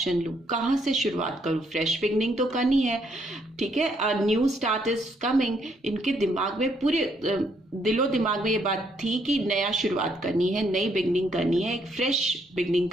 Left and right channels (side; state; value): both; normal; correlation 0.72